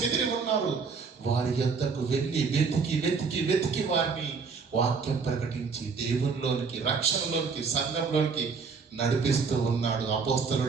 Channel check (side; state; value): left; quieter; 5.2 dB